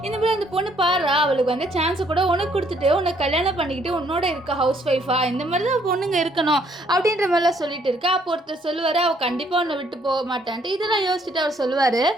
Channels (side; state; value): both; normal; correlation 0.67